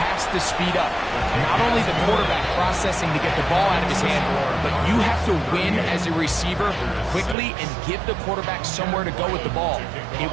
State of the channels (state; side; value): drops out; left; at 7.4 s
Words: to speed up. Not only the quarterback processing to get the ball out of his hand, but you have to win as a receiver quickly and give the quarterback somewhere to go with the ball. It